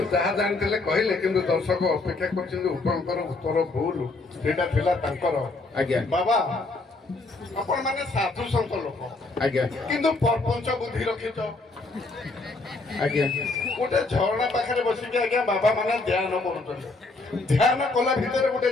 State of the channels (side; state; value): right; quieter; 3.4 dB